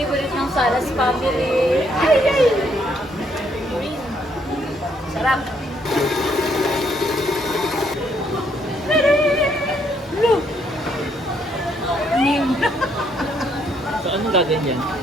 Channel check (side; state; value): both; normal; correlation 0.71